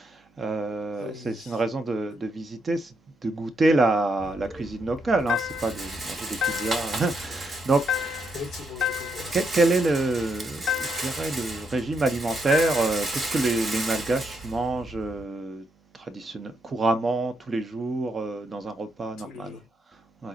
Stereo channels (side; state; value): both; normal; correlation 0.79